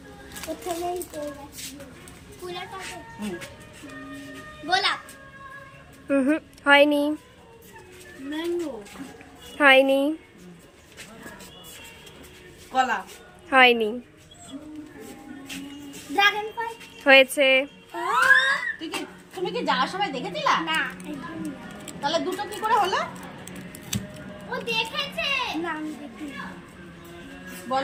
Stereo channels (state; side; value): identical; both; correlation 1.00